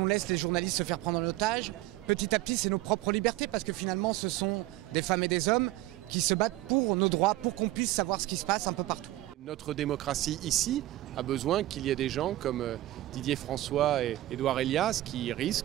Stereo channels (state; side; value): quieter; left; 16.3 dB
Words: laisse les journalistes se faire prendre en otage, petit à petit c'est nos propres libertés parce que finalement ce sont des femmes et des hommes qui se battent pour nos droits, pour qu'on puisse savoir ce qui se passe un peu partout. Notre démocratie ici a besoin qu'il y ait des gens comme Didier François et Edouard Elias qui